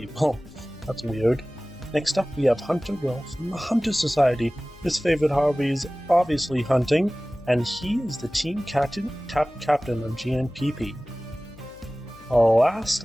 That's weird. Next up, we have Hunter Will from the Hunter Society. His favorite hobby is obviously hunting, and he is the team captain of GNPP.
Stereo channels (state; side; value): noise; left; hum, 23 dB below the sound